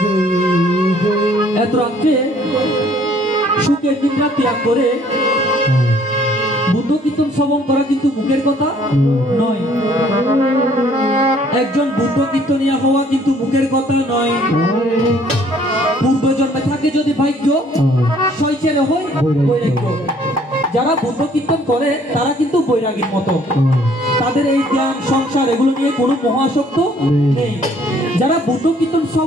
এত রাত্রে সুখের দিনটা ত্যাগ করে বুদ্ধ কীর্তন শ্রবণ করা কিন্তু মুখের কথা নয়, একজন বুদ্ধ কীর্তনিয়া হওয়া কিন্তু মুখের কথা নয়। পূর্ব জন্মে থাকে যদি ভাগ্য, শৈচেরে হয় বৈরাগ্য। যারা বুদ্ধ কীর্তন করে তারা কিন্তু বৈরাগীর মতো, তাদের এই জ্ঞান সংসার এগুলো নিয়ে কোনো মহাসক্ত নেই। যারা বুদ্ধ কীর্তন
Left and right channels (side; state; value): both; normal; correlation 0.60